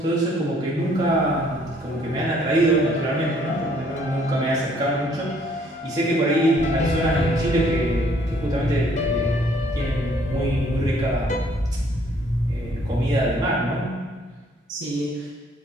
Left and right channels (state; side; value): normal; both; correlation 0.62